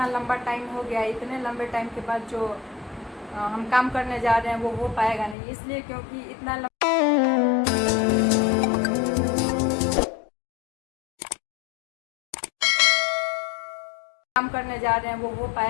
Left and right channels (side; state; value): right; drops out; at 5.4 s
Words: लंबा टाइम हो गया है, इतने लंबे टाइम के बाद जो हम काम करने जा रहे हैं वो हो पाएगा नहीं, इसलिए क्योंकि इतना काम करने जा रहे हैं वो हो